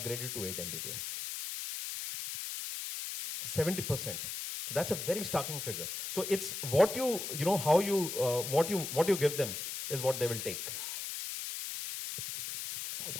to 8 Mbps. 70%. So that's a very starking figure. So it's what what you give them is what they will take.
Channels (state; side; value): noise; left; hiss, 5 dB below the sound